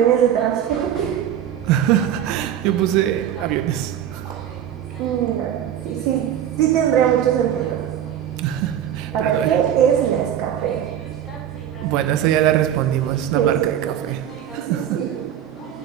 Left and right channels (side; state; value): left; quieter; 10.2 dB